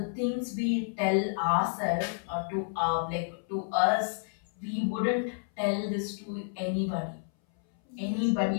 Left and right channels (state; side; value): silent; right; 58 dB below the other